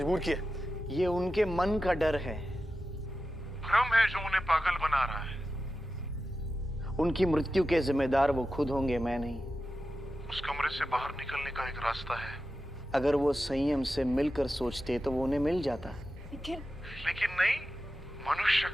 किया। ये उनके मन का डर है। भ्रम है जो उन्हें पागल बना रहा है। उनकी मृत्यु के जिम्मेदार वो खुद होंगे, मैं नहीं। उस कमरे से बाहर निकलने का एक रास्ता है। अगर वो संयम से मिलकर सोचते तो वो उन्हें मिल जाता। लेकिन नहीं, मनुष्य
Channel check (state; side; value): normal; both; correlation 0.92